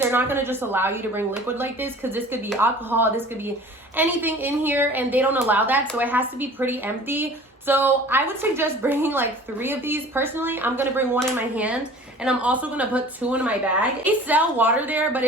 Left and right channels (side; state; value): both; normal; correlation 0.45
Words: not going to just allow you to bring liquid like this, because this could be alcohol, this could be anything in here, and they don't allow that. So it has to be pretty empty. So I would suggest bringing like 3 of these. Personally, I'm going to bring 1 in my hand, and I'm also going to put 2 in my bag. They sell water there, but